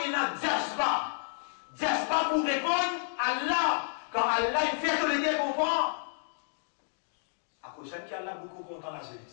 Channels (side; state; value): right; silent; digital silence